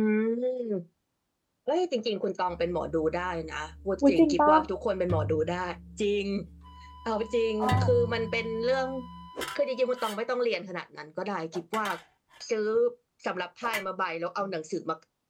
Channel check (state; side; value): identical; both; correlation 1.00